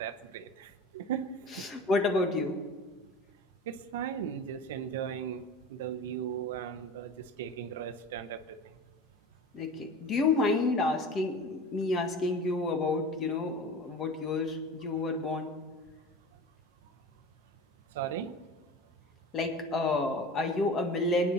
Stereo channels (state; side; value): normal; both; correlation 0.35